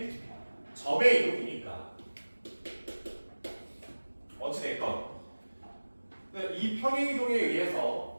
점의 이동이니까. 어찌됐건 이 평행이동에 의해서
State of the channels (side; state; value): both; inverted; correlation -1.00